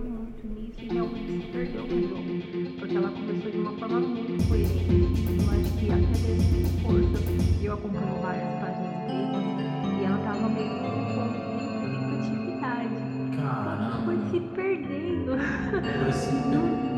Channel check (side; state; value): both; identical; correlation 1.00